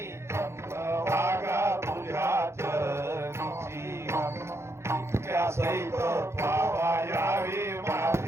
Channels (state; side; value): late; left; 0.13 ms